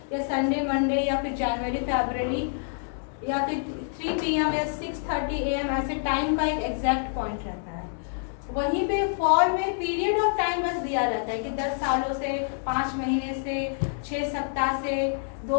या संडे मंडे या फिर जनवरी फरवरी या फिर 3 PM या 6:30 AM, ऐसे टाइम का एक एग्जैक्ट पॉइंट रहता है। वहीं पे फॉर में पीरियड ऑफ टाइम बस दिया रहता है कि 10 सालों से, 5 महीने से, 6 सप्ताह से,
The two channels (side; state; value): right; silent; digital silence